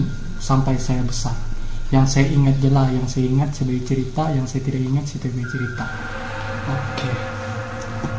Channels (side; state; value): both; identical; correlation 1.00